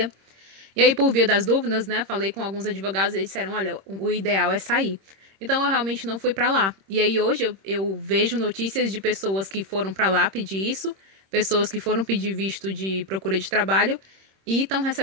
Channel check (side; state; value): left; late; 26 ms